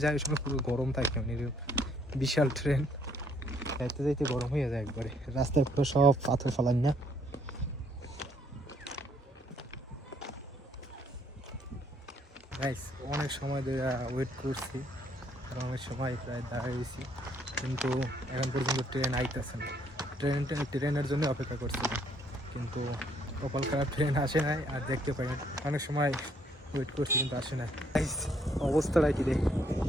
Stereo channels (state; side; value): normal; both; correlation 0.67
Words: যায় ওই সময় পুরো গরম থাকে, মানে বিশাল ট্রেন যাইতে গরম হয়ে যায় একবারে। রাস্তায় পুরো সব পাথর ফালান না। গাইস অনেক সময় ধরে ওয়েট করছি, আর অনেক সময় প্রায় দাঁড়িয়েছি, কিন্তু এখন পর্যন্ত ট্রেন আইতেছে না। ট্রেনের জন্য অপেক্ষা করছিলাম, কিন্তু কপাল খারাপ, ট্রেন আসে নাই আর দেখতে পাই না। অনেক সময় ওয়েট করছি কিন্তু আসে না। অবস্থাটা কি দেখ,